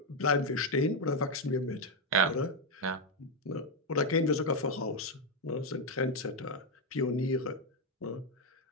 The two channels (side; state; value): both; normal; correlation 0.04